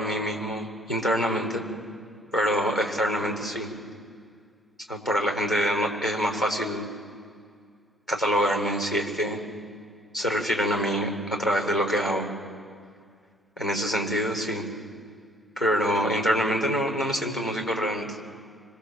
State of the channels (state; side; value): normal; both; correlation 0.59